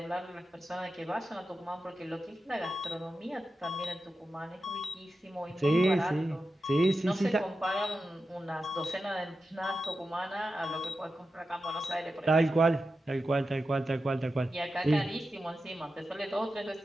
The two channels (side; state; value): both; normal; correlation 0.91